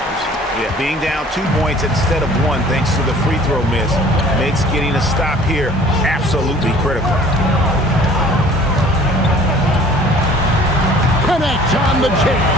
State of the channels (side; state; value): both; normal; correlation 0.51